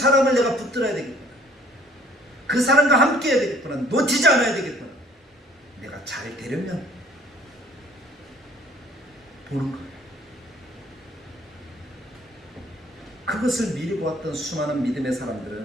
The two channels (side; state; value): both; normal; correlation 0.56